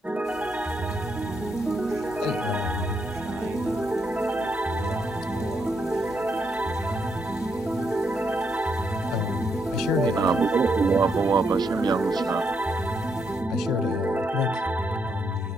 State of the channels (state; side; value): normal; both; correlation 0.78